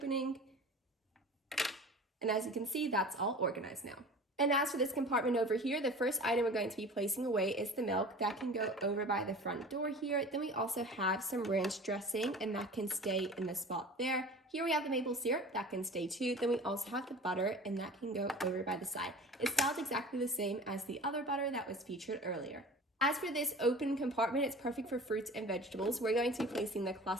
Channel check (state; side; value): normal; both; correlation 0.40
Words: And as you can see, that's all organized now. And as for this compartment over here, the first item we're going to be placing away is the milk. That can go over by the front door here. Then we also have some ranch dressing, and that can stay in the spot there. Here we have the maple syrup, that can stay too. Then we also have the butter, and that can go over by the side. It's styled exactly the same as the other butter that was featured earlier. As for this open compartment, it's perfect for fruits and vegetables. We're going to be placing the